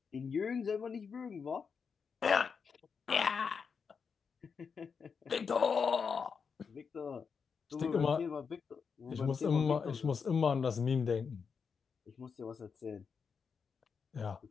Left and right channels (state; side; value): quieter; right; 5.9 dB